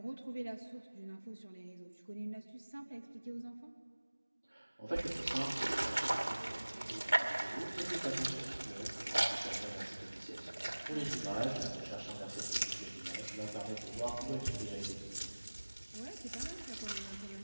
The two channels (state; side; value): inverted; both; correlation -1.00